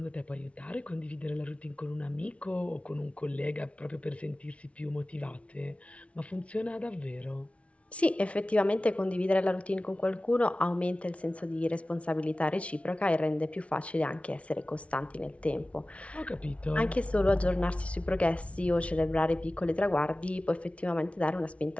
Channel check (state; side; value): late; right; 0.063 ms